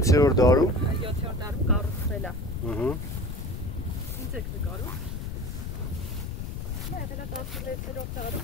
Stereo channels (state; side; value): noise; left; rumble, 5 dB below the sound